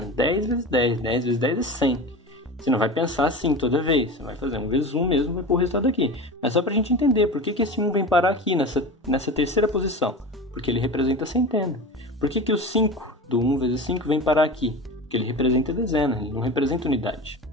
10 vezes 10. 10 vezes 10 é 100. Você não vai pensar assim toda vez. Você vai fazer 1 vezes 1 mesmo, vai pôr o resultado aqui. Mas só pra gente entender por que esse 1 vem parar aqui, nessa terceira posição. Porque ele representa a centena. Por que o 5 do 1 vezes 5 vem parar aqui? Porque ele representa a dezena, ele não representa unidade.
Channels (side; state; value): both; normal; correlation 0.30